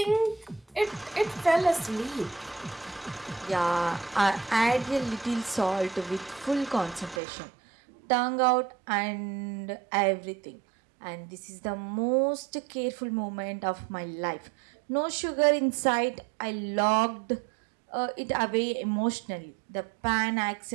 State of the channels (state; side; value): drops out; left; at 7.2 s